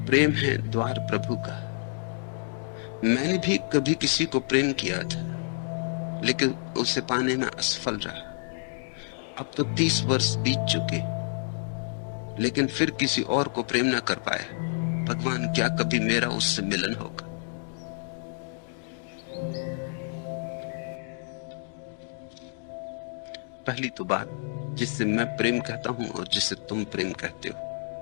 प्रेम है द्वार प्रभु का। मैंने भी कभी किसी को प्रेम किया था, लेकिन उसे पाने में असफल रहा। अब तो 30 वर्ष बीत चुके, लेकिन फिर किसी और को प्रेम न कर पाया। भगवान, क्या कभी मेरा उससे मिलन होगा? पहली तो बात, जिससे मैं प्रेम कहता हूं और जिसे तुम प्रेम कहते हो,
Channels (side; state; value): right; silent; digital silence